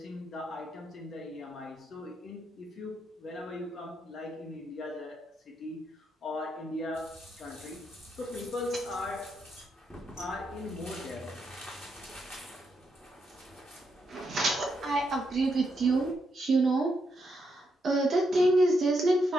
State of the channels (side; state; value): both; normal; correlation 0.81